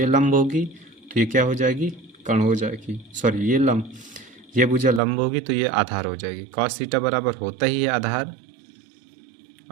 लंब होगी, तो ये क्या हो जाएगी, कर्ण हो जाएगी। सॉरी, ये लंब, ये भुजा लंब होगी तो ये आधार हो जाएगी। कॉस थीटा बराबर होता ही है आधार,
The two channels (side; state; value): left; drops out; at 5.0 s